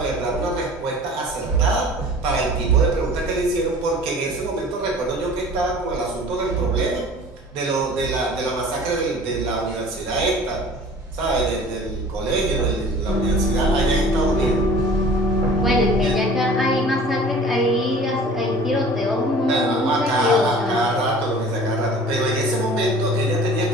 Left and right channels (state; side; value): normal; both; correlation 0.45